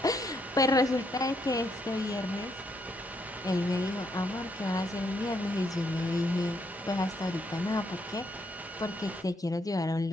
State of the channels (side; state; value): both; normal; correlation 0.75